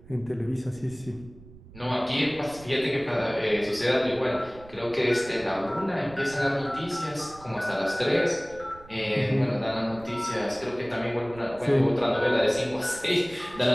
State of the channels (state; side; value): noise; right; rumble, 20 dB below the sound